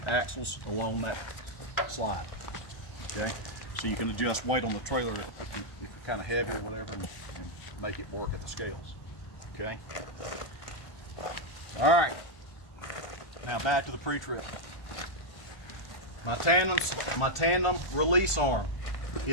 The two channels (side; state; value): right; late; 1.5 ms